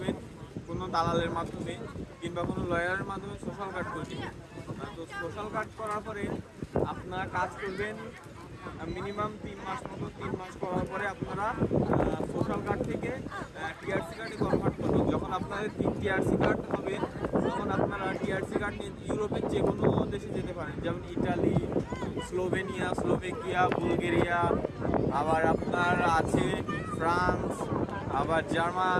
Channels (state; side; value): identical; both; correlation 1.00